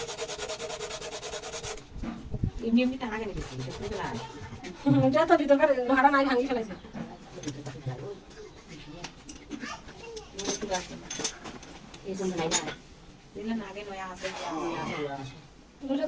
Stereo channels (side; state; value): both; identical; correlation 1.00